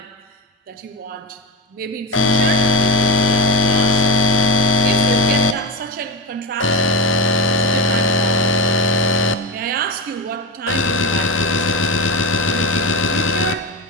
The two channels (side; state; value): both; normal; correlation 0.18